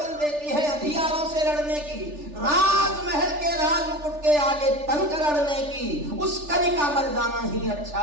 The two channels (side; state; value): left; late; 3.4 ms